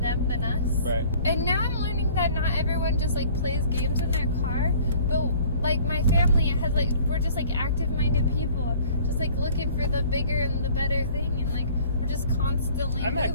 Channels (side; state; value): both; inverted; correlation -0.51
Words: than us. Right. And now I'm learning that not everyone just, like, plays games in their car, but... Like, my family has, like, we're just, like, active-minded people. Just, like, looking for the bigger and the better thing. And, like, we're just constantly I'm moving.